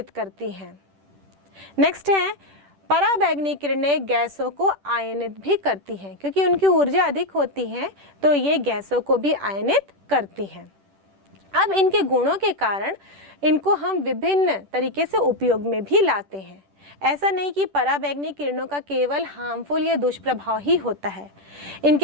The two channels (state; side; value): late; left; 10 ms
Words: करती हैं। नेक्स्ट है, पराबैंगनी किरणें गैसों को आयनित भी करती हैं, क्योंकि उनकी ऊर्जा अधिक होती है तो ये गैसों को भी आयनित करती हैं। अब इनके गुणों के कारण इनको हम विभिन्न तरीके से उपयोग में भी लाते हैं। ऐसा नहीं कि पराबैंगनी किरणों का केवल हार्मफुल या दुष्प्रभाव ही होता है,